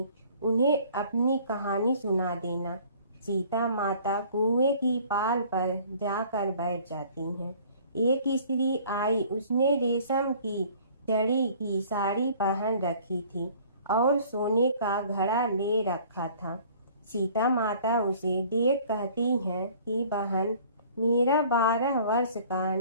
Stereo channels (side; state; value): both; inverted; correlation -0.52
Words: उन्हें अपनी कहानी सुना देना। सीता माता कुएं की पाल पर जाकर बैठ जाती हैं। एक स्त्री आई, उसने रेशम की जड़ी की साड़ी पहन रखी थी और सोने का घड़ा ले रखा था। सीता माता उसे देख कहती हैं कि बहन, मेरा 12 वर्ष का